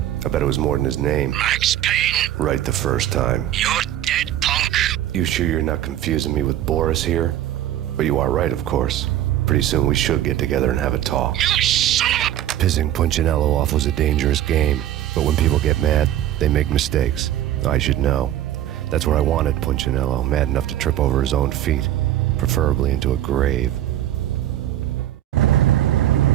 I bet it was more than his name. Max Payne, Right the first time. you're dead, punk. You sure you're not confusing me with Boris here? But you are right, of course. Pretty soon we should get together and have a talk. You son of a... Pissing Punchinello off was a dangerous game, but when people get mad, they make mistakes. I should know. That's where I wanted Punchinello, mad enough to trip over his own feet, preferably into a grave.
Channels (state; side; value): quieter; left; 12.5 dB